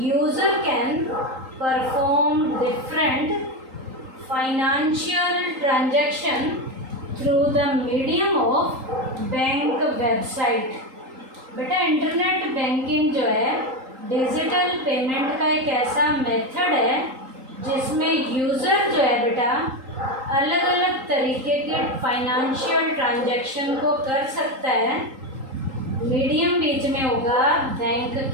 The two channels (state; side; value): late; left; 3.8 ms